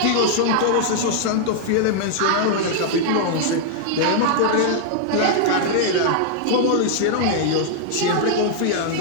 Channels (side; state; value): both; different; correlation -0.01